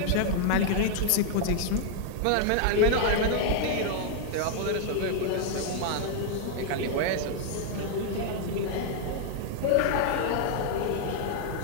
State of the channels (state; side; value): different; both; correlation 0.00